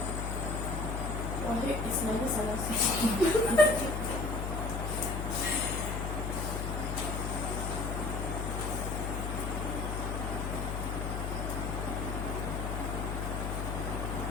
Wahid Ismail salah.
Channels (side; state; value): left; noise; hum, 2 dB below the sound